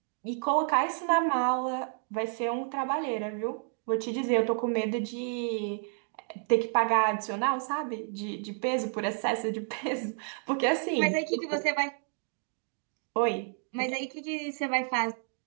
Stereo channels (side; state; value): left; silent; 57 dB below the other